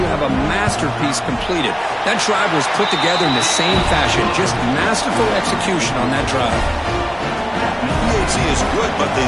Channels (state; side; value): identical; both; correlation 1.00